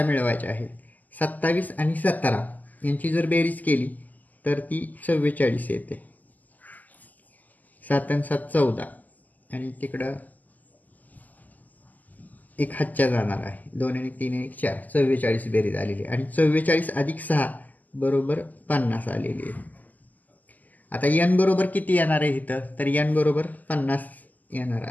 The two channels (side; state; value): right; late; 0.081 ms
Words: मिळवायचे आहेत। 27 आणि 17 यांची जर बेरीज केली तर ती 44 येते। 7 आणि 7 14, आणि तिकडं एक हातच्या जाणार आहे. 2 आणि 3 आणि 4 44 बेरीज आलेली आणि 44 अधिक 6 बरोबर 50 आलेली आहे. आता n बरोबर किती येणार आहे इथं, तर n बरोबर 50 येणार